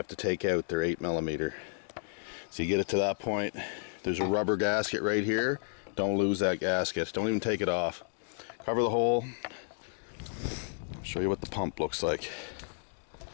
to take out. They're 8mm. So you get it to that point. There's a rubber gasket right here. Don't lose that gasket. Don't even take it off. Cover the hole. I'll show you what the pump looks like.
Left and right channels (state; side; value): silent; right; digital silence